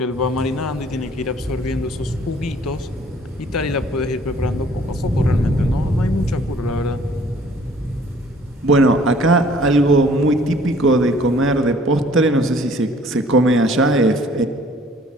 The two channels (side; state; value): both; normal; correlation 0.56